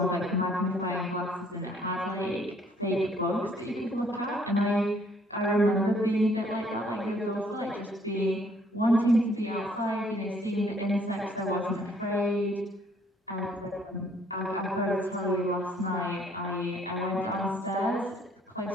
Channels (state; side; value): normal; both; correlation 0.63